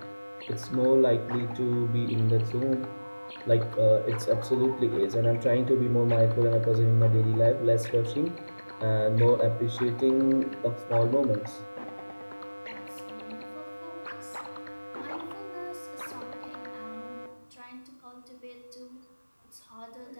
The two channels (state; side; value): inverted; both; correlation -1.00